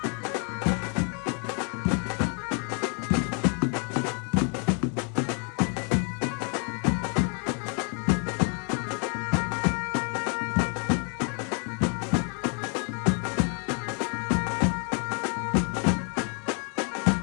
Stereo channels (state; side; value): quieter; right; 39.4 dB